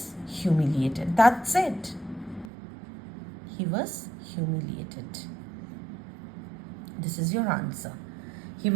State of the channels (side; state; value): left; drops out; at 2.5 s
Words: humiliated. That's it. He was humiliated. This is your answer. He